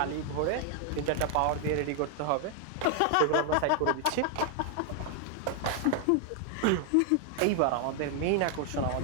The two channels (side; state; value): both; different; correlation 0.00